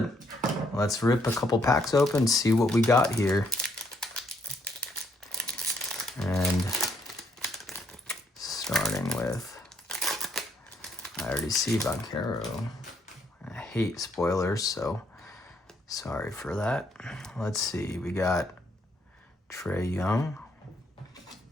Let's rip a couple packs open, see what we got here. And starting with, I already see Banchero. I hate spoilers, so sorry for that. Let's see, we got Trae Young.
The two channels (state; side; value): normal; both; correlation 0.71